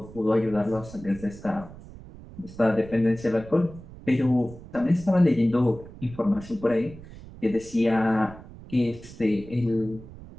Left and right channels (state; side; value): noise; right; rumble, 17 dB below the sound